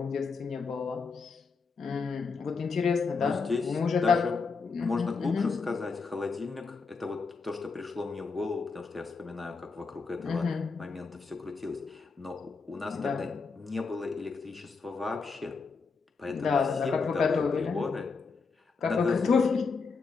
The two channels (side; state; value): right; quieter; 4.7 dB